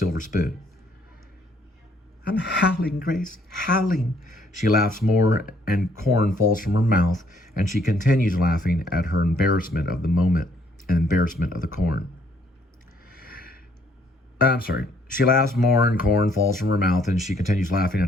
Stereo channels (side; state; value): both; normal; correlation 0.66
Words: spoon. I'm howling, Grace, howling. She laughs more and corn falls from her mouth, and she continues laughing at her embarrassment of the moment and embarrassment of the corn. She laughs more and corn falls from her mouth, and she continues laughing at